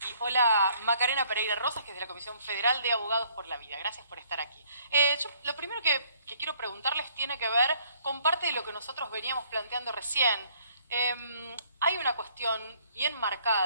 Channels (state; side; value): inverted; both; correlation -0.63